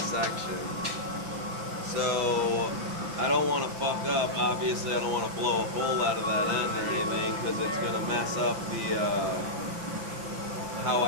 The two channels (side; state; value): left; late; 5.8 ms